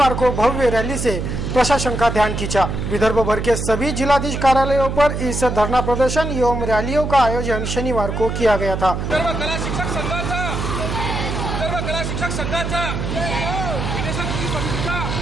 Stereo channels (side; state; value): right; noise; hum, 3 dB below the sound